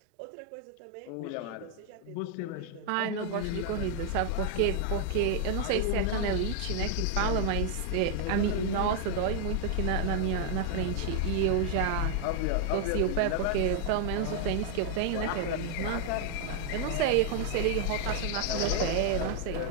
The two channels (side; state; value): both; different; correlation 0.00